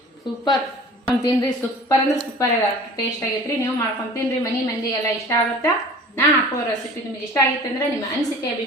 ಸೂಪರ್ ತಿನ್ರಿ. ಸೂಪರ್ ಅಂದ್ರೆ ಸೂಪರ್ ಟೇಸ್ಟ್ ಆಗೈತ್ರಿ. ನೀವು ಮಾಡ್ಕೊಂಡು ತಿನ್ರಿ. ಮನಿ ಮಂದಿಗೆಲ್ಲ ಇಷ್ಟ ಆಗುತ್ತಾ. ನಾ ಹಾಕುವ ರೆಸಿಪಿ ನಿಮಗೆ ಇಷ್ಟ ಆಗಿತ್ತು ಅಂದ್ರೆ ನಿಮ್ಮ ಅನಿಸಿಕೆ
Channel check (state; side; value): normal; both; correlation 0.44